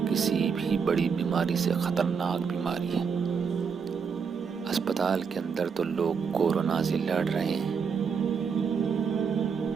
کسی بھی بڑی بیماری سے خطرناک بیماری ہے۔ اسپتال کے اندر تو لوگ کورونا سے لڑ رہے ہیں،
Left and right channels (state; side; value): quieter; left; 6.1 dB